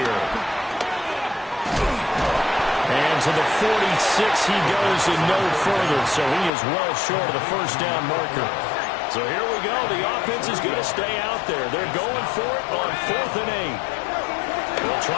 And to the 46 he goes and no further. So he is well short of the first down marker. So here we go. The offense is going to stay out there. They're going for it on 4th and 8. They'll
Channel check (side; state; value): right; drops out; at 6.5 s